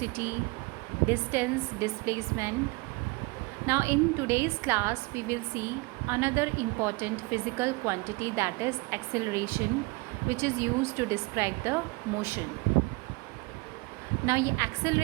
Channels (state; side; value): quieter; left; 26.0 dB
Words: distance, displacement. Now in today's class we will see another important physical quantity, that is acceleration, which is used to describe the motion. Now ये